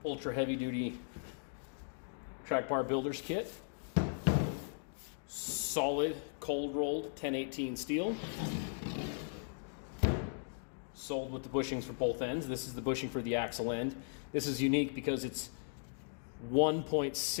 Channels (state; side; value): silent; right; digital silence